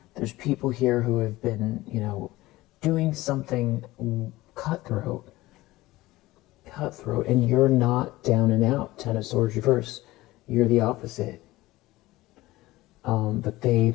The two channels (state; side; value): quieter; right; 18.4 dB